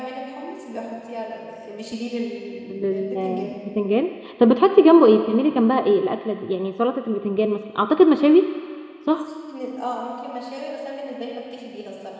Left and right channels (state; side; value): identical; both; correlation 1.00